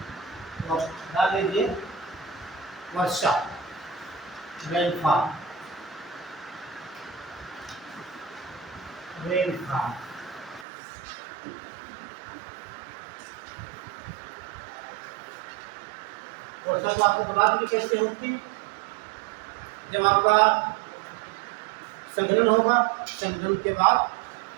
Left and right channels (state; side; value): drops out; left; at 10.7 s